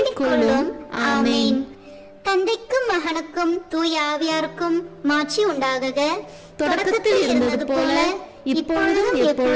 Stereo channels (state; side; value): identical; both; correlation 1.00